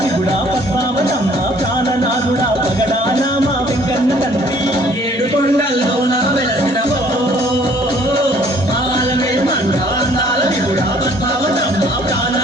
విగుడా పద్మావతమ్మ ప్రాణనాథుడా పగడానా మా వెంకన్న తండ్రి. ఏడుకొండల్లో నా వెలసినవో మాన్వేల్ మంగా అందాల విగుడా పద్మావతమ్మ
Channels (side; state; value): both; normal; correlation 0.58